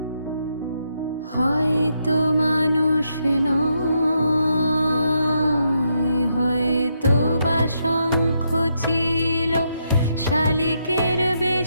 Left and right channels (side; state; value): both; inverted; correlation -0.79